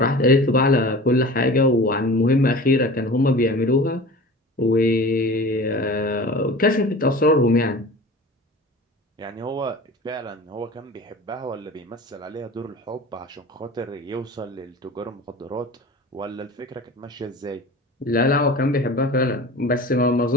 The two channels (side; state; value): both; normal; correlation 0.38